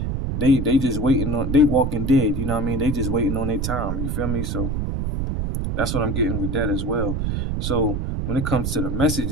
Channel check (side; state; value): right; noise; rumble, 1 dB below the sound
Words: just waiting on. They walking dead. You know what I mean? They just waiting on their time. You feel me? So that's what I'm getting with that as well. So when it comes to the